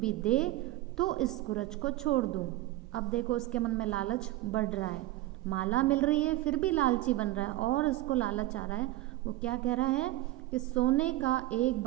दे तो इस कुरज को छोड़ दूं। अब देखो उसके मन में लालच बढ़ रहा है, माला मिल रही है फिर भी लालची बन रहा है और उसको लालच आ रहा है। वो क्या कह रहा है कि सोने का एक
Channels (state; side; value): quieter; left; 17.0 dB